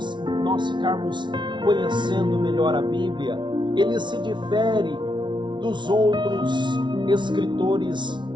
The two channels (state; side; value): late; left; 0.23 ms